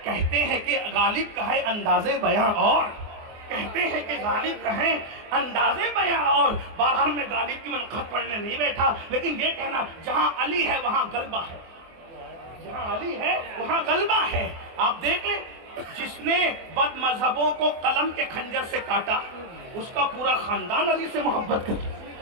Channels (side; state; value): left; late; 24 ms